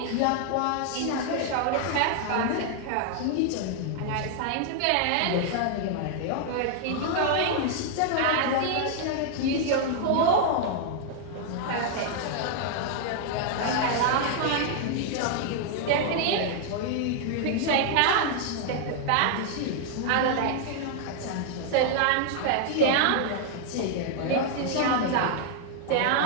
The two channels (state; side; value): different; both; correlation 0.00